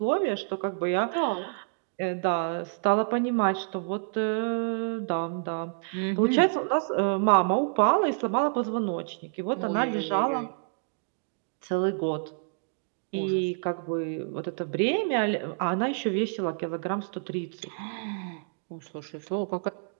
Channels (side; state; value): left; silent; digital silence